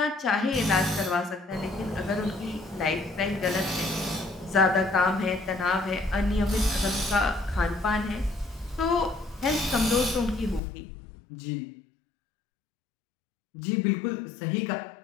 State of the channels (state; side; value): drops out; right; at 10.6 s